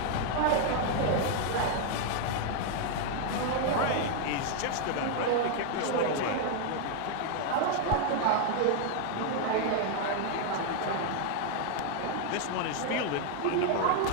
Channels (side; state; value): both; different; correlation 0.00